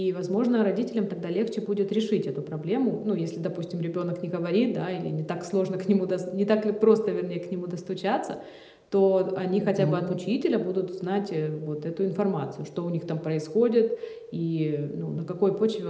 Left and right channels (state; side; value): identical; both; correlation 1.00